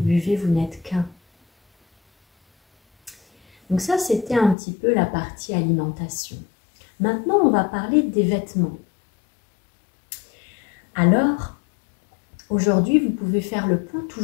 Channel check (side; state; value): right; drops out; at 4.5 s